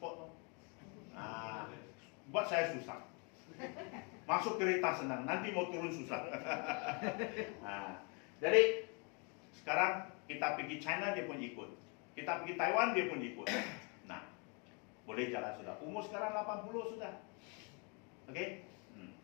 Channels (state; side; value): quieter; right; 34.2 dB